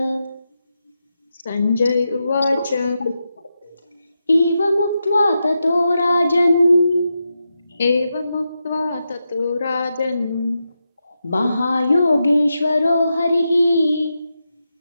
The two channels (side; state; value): both; inverted; correlation -0.87